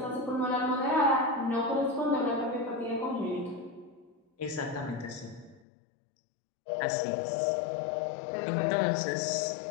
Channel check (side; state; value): right; drops out; at 5.7 s